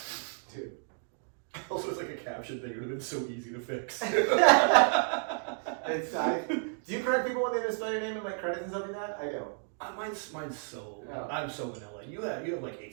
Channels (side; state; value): left; silent; 57 dB below the other